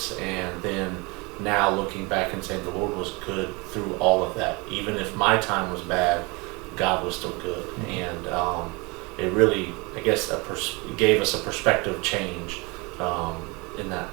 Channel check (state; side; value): quieter; left; 27.3 dB